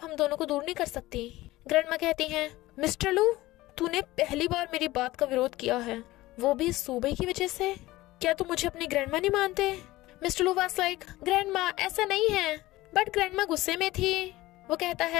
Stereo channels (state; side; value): quieter; right; 18.0 dB